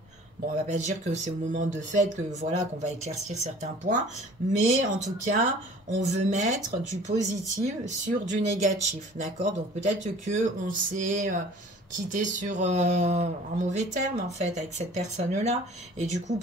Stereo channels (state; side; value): normal; both; correlation 0.48